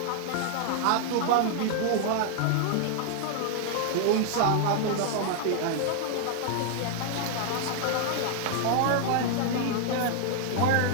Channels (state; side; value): different; both; correlation 0.00